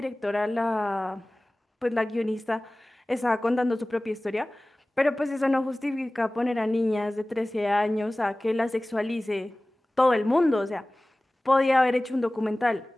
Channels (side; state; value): both; normal; correlation 0.98